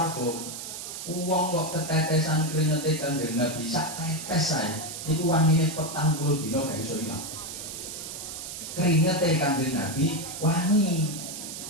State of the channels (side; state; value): right; noise; hiss, 8 dB below the sound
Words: uang kok ketetesan keringetnya Kanjeng Nabi sak tetes saya, itu wanginya 40 dino gak bisa hilang. Keringetnya Kanjeng Nabi wangi.